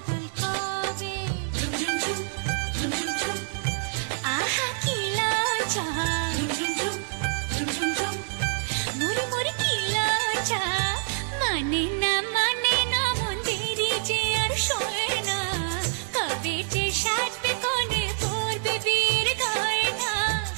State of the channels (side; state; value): left; silent; 57 dB below the other